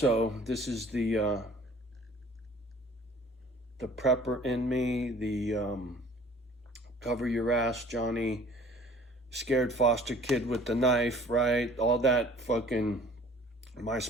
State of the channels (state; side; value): normal; both; correlation 0.51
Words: this is the prepper in me, the cover your ass, Johnny, scared foster kid with the knife, right? All that fucking, my